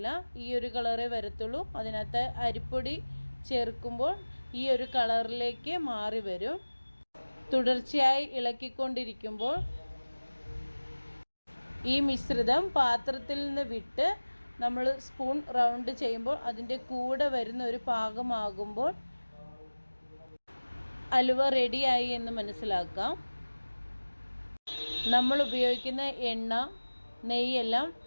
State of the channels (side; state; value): both; inverted; correlation -1.00